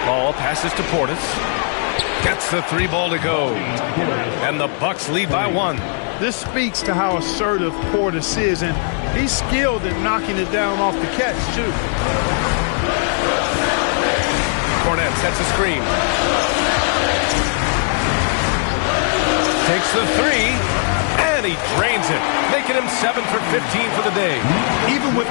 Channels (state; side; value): silent; right; 58 dB below the other